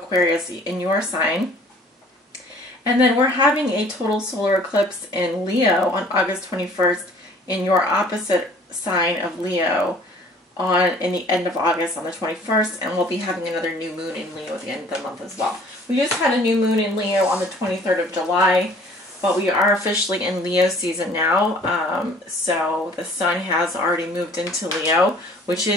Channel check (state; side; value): normal; both; correlation 0.53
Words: in your sign. And then we're having a total solar eclipse in Leo on August 21st in your opposite sign of Leo in the end of August on the 21st, and we'll be having another new moon in Leo at the end of the month as well. We just had a new moon in Leo on the 23rd of July, but we are officially in Leo season now. So the sun has already moved into Leo, which